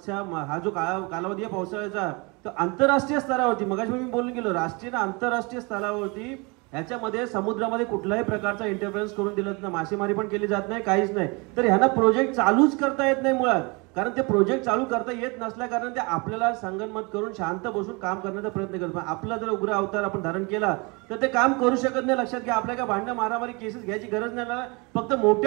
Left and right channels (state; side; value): quieter; left; 28.8 dB